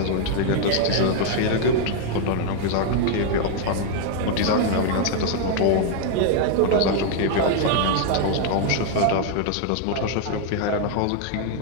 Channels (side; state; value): both; different; correlation 0.00